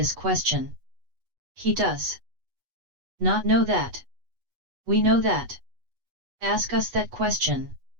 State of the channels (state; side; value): late; left; 8.1 ms